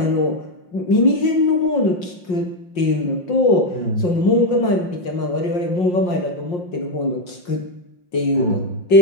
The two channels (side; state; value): right; late; 5.6 ms